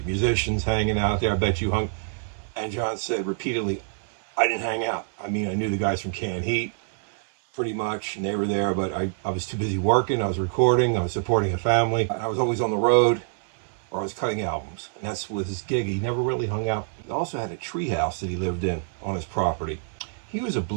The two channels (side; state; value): left; silent; digital silence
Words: musicians hanging out there? I bet you hung. And John said repeatedly, I didn't hang out. I mean, I knew the guys from Canned Heat pretty much, and they were there, but I was too busy working. I was recording. I was supporting a family. I was always on the road, or I was cutting albums. And that's with his gig. He never really hung out. He also had a tree house that he lived in on his property. He was a